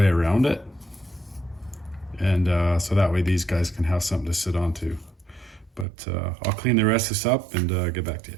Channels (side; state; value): left; drops out; at 5.9 s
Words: around it. And so that way these guys can have something to sit onto. But I'll clean the rest of this up and get back to